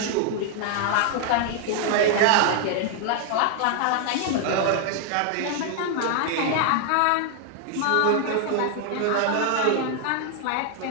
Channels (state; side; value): different; both; correlation 0.00